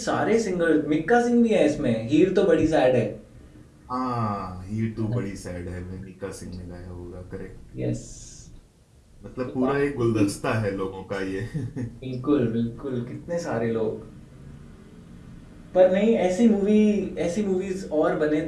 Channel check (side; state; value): both; identical; correlation 1.00